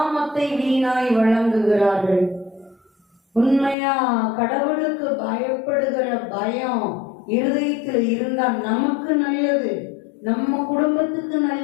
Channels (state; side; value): drops out; right; at 3.8 s